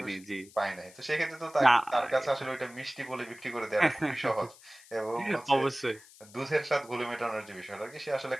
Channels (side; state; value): left; noise; hiss, 22 dB below the sound